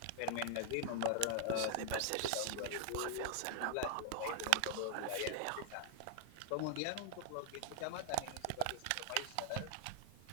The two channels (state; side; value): different; both; correlation -0.01